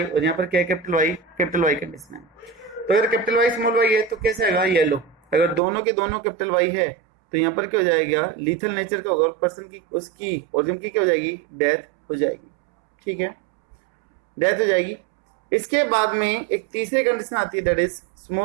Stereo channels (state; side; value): drops out; left; at 5.6 s